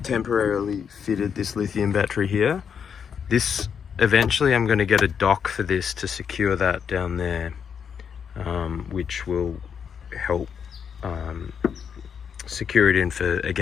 Temporarily fitted this lithium battery here. This eventually I'm going to get a dock for this to secure that down there, which will help secure it in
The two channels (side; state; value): right; quieter; 7.2 dB